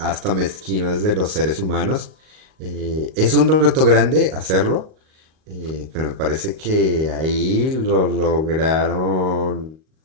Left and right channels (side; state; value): left; late; 38 ms